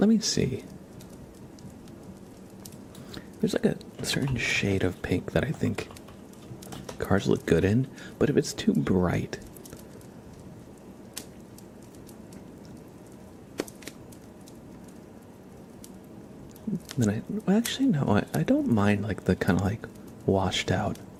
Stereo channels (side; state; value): both; identical; correlation 1.00